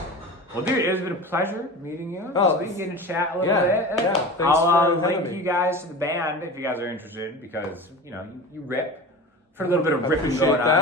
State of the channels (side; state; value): both; normal; correlation 0.33